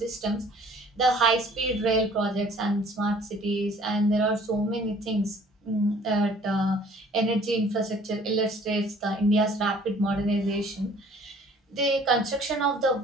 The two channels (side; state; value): both; normal; correlation 0.55